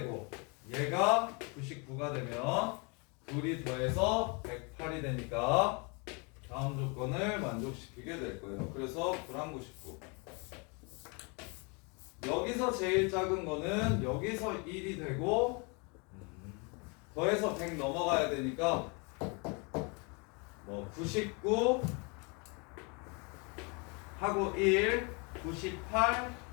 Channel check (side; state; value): right; quieter; 32.3 dB